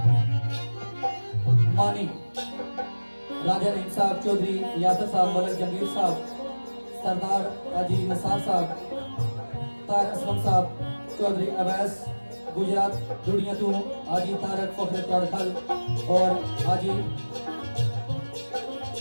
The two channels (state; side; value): inverted; both; correlation -1.00